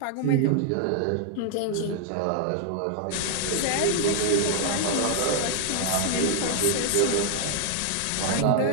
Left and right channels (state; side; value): different; both; correlation 0.00